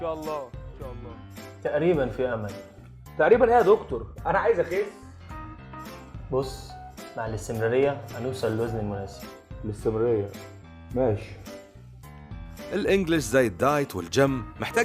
الله ان شاء الله. تقريبا في امل. تقريبا ايه يا دكتور؟ انا عايز اخس. بص، مع الاستمرارية هنوصل للوزن المناسب. الاستمرارية ماشي. الانجليش زي الدايت والجيم محتاج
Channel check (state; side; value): identical; both; correlation 1.00